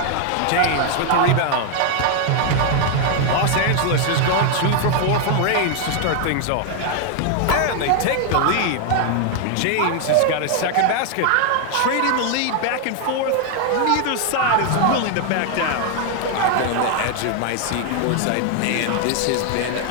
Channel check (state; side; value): different; both; correlation 0.00